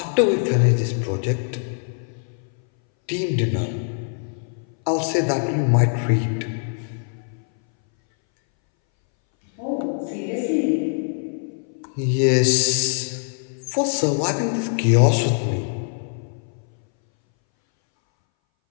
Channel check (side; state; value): right; silent; 61 dB below the other